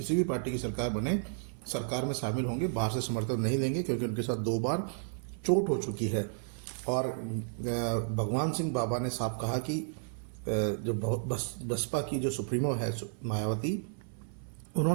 भी पार्टी की सरकार बने, सरकार में शामिल होंगे, बाहर से समर्थन नहीं देंगे, क्योंकि उनके साथ 2 बार चोट हो चुकी है। और भगवान सिंह बाबा ने साफ कहा कि जो बसपा की जो सुप्रीमो है मायावती,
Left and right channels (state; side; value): silent; left; 56 dB below the other